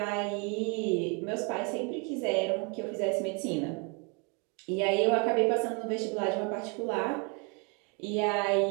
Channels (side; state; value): left; quieter; 33.5 dB